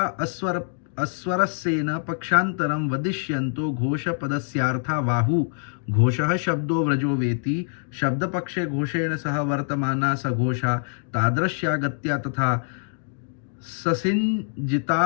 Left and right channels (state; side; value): silent; right; digital silence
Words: अस्वरस्येन पक्षान्तरं वदिष्यन्तो घोषपदस्यार्था बाहु। घोषः शब्दो व्रजो वेति शब्दपक्षे घोषेण सह वर्तमाना सघोषा तादृश्या गत्या तथा